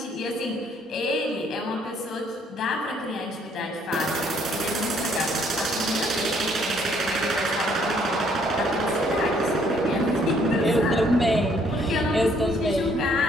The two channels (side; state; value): both; normal; correlation 0.65